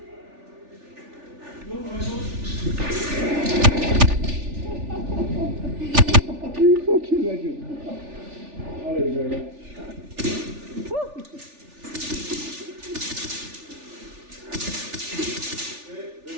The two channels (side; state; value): left; late; 3.4 ms